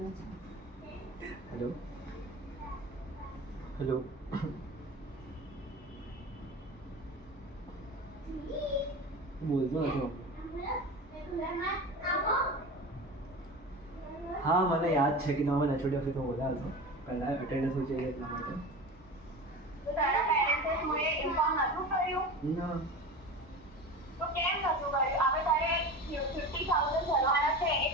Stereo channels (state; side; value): normal; both; correlation 0.31